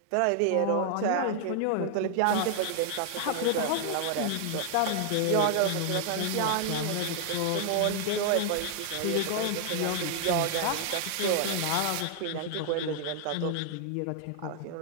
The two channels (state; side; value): different; both; correlation 0.00